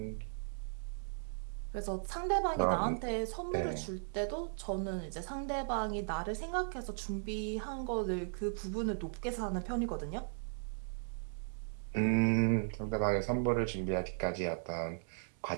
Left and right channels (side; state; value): left; silent; digital silence